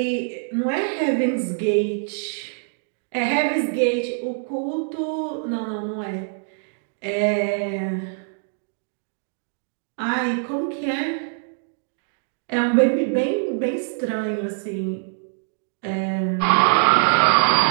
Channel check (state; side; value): silent; left; digital silence